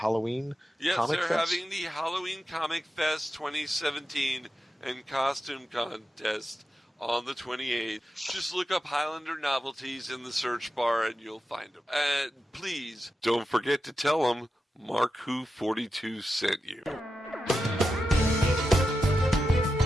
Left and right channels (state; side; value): normal; both; correlation 0.90